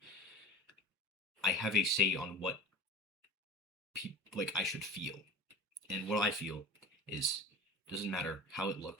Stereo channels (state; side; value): normal; both; correlation 0.37